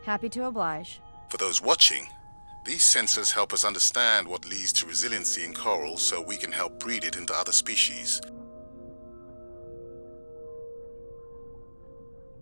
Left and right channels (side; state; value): both; inverted; correlation -1.00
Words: Happy to oblige. For those watching, these sensors help us understand what leads to resiliency in coral so we can help breed it into other species.